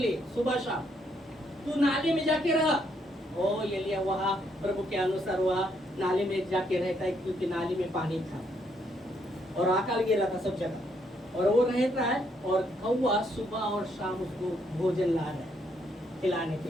सुबह शाम। तू नाले में जाके रहा। ओ एलिया वहाँ प्रभु के अनुसार वहाँ नाले में जाके रहता है, क्योंकि नाले में पानी था और अकाल गिरा था सब जगह, और वो रहता है और कौवा सुबह और शाम उसको भोजन ला रहा है खिलाने के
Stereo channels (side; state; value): both; normal; correlation 0.73